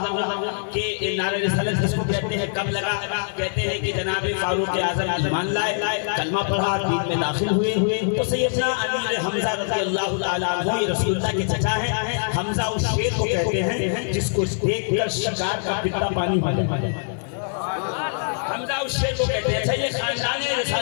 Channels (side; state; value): right; silent; 55 dB below the other